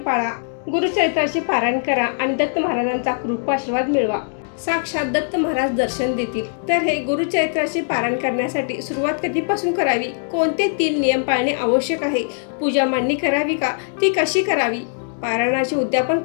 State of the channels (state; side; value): silent; right; digital silence